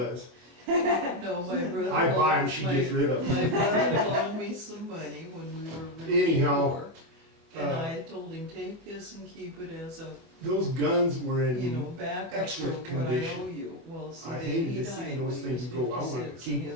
No, my brother. I buy 'em, loaned- she my- gets rid of 'em. My brother loaned me some money when we were really Anyhow, poor. And uh, I told him, take this and keep it as a, Those guns were in. you know, backup for excellent what I condition. owe you. Well, see, I then hated he to see died those when he things was go. I wanted to 56 keep and 'em.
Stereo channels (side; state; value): left; late; 25 ms